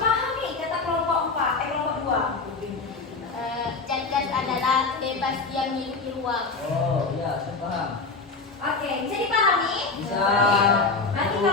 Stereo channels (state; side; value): quieter; right; 4.0 dB